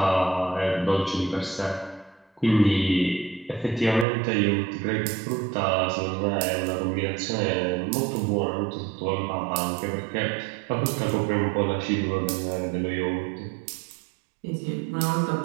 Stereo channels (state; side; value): drops out; left; at 4.0 s